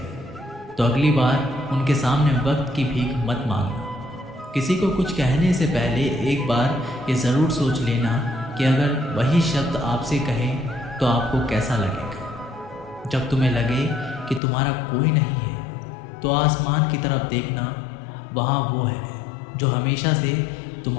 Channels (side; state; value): right; drops out; at 14.4 s